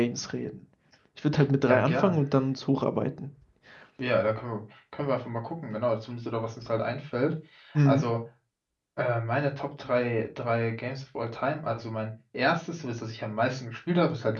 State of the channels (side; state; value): both; identical; correlation 1.00